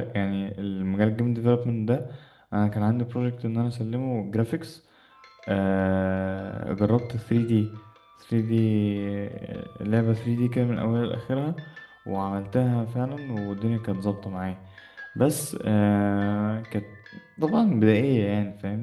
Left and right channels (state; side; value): identical; both; correlation 1.00